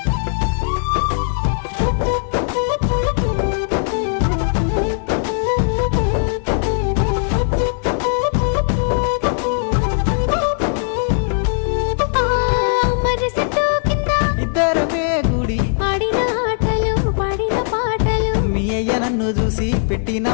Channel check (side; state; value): right; silent; 59 dB below the other